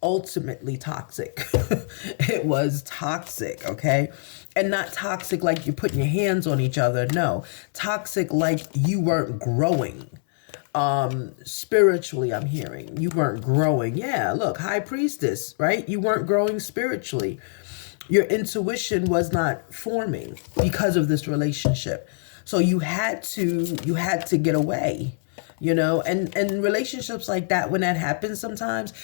ultimately toxic. It was toxic, okay? And not toxic like you're putting your hands on each other. No, toxic like you weren't growing. Spiritually, I'm hearing you weren't growing. Yeah, look, High Priestess, right? You weren't growing spiritually. Your intuition was not forming because of this relationship. So you had to get away. you know, and relationships like that, when that happens sometimes,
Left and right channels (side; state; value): right; silent; 62 dB below the other